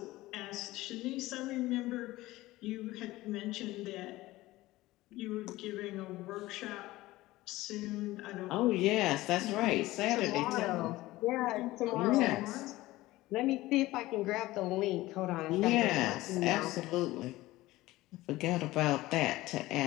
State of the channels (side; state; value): right; quieter; 18.0 dB